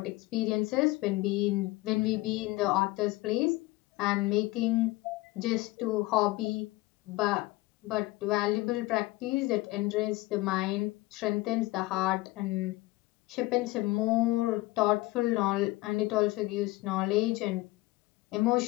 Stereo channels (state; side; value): quieter; right; 20.1 dB